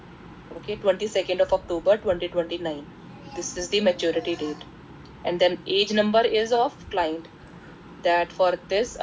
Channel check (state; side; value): identical; both; correlation 1.00